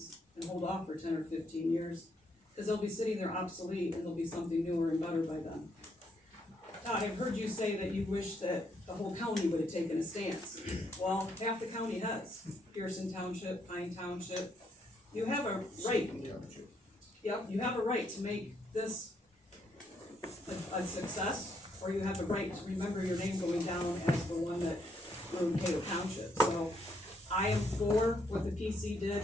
and hold off for 10 or 15 years? Because they'll be sitting there obsolete and there'll be something newer and better by then. Todd, I've heard you say that you wish that the whole county would have taken a stance. Well, half the county has. Pearson Township, Pine Township. You have a right. Yep, you have a right to make this a success, or you have the right to remember your name going down as the one that ruined Cato Township. So I am for what the PC did.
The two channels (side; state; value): both; normal; correlation 0.74